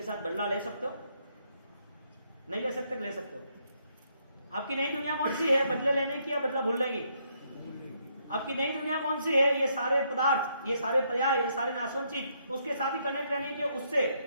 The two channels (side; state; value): both; inverted; correlation -0.73